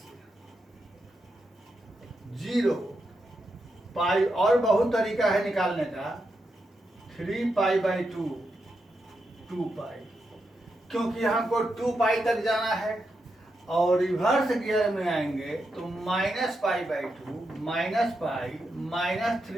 0 पाई, और बहुत तरीका है निकालने का। 3 पाई बाई 2 2 पाई, क्योंकि हमको 2 पाई तक जाना है, और रिवर्स गियर में आएंगे तो -pi by 2 minus pi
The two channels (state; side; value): normal; both; correlation 0.85